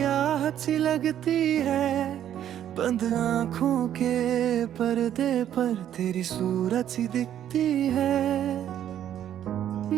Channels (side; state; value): left; quieter; 10.7 dB